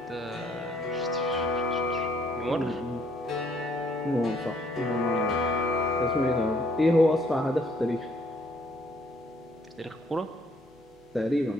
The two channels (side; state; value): both; normal; correlation 0.65